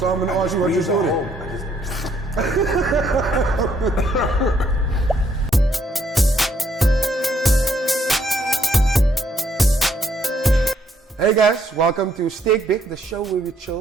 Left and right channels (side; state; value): both; normal; correlation 0.70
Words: I'm gonna ask you what your story. Hey guys, welcome to SterkBek, the show where we